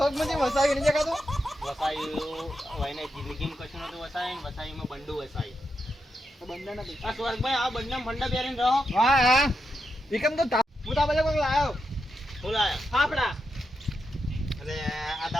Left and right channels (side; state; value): both; normal; correlation 0.85